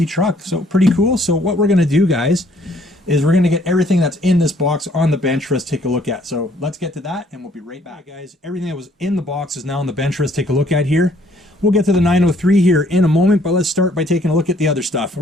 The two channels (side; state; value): both; normal; correlation 0.63